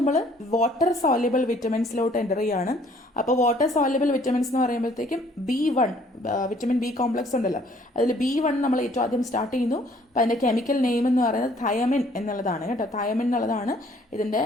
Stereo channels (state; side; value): normal; both; correlation 0.60